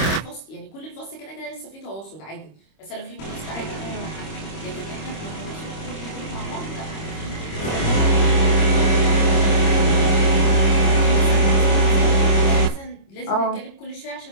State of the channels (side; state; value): right; late; 25 ms